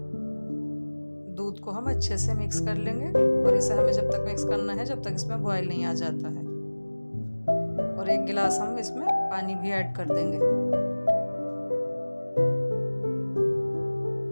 दूध को हम अच्छे से मिक्स कर लेंगे और इसे हमें जब तक मिक्स करना है जब तक इसमें बॉयल नहीं आ जाता है। और 1 गिलास हम इसमें पानी भी ऐड कर देंगे।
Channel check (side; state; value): both; inverted; correlation -1.00